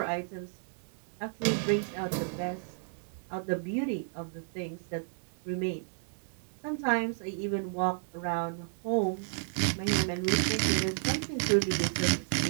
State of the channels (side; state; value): left; silent; digital silence